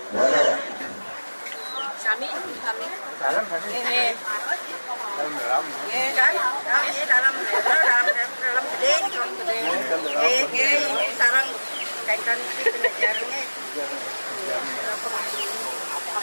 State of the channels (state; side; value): inverted; both; correlation -1.00